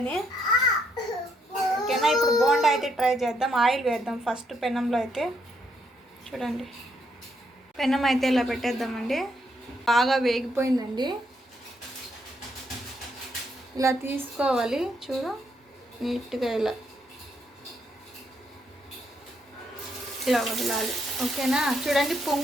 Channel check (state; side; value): normal; both; correlation 0.75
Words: ఓకేనా, ఇప్పుడు బోండా అయితే ట్రై చేద్దాం. ఆయిల్ వేద్దాం ఫస్ట్ పెనంలో అయితే. చూడండి, పెనం అయితే ఇలా పెట్టేద్దామండి. బాగా వేగిపోయిందండి. ఇలా తీసుకోవాలి, చూడు నీట్గా ఇలా వదలాలి. ఓకేనా, చూడండి